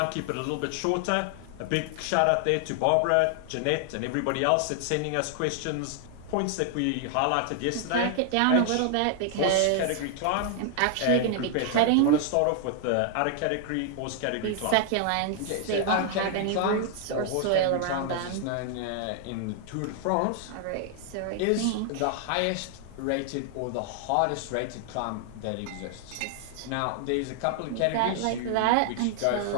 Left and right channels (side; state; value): both; different; correlation 0.00